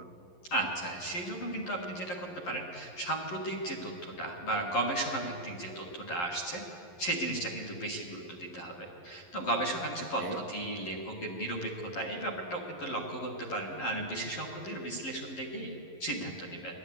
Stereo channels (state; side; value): late; right; 11 ms